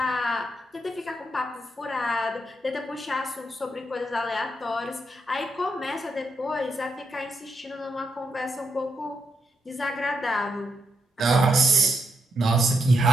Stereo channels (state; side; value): normal; both; correlation 0.80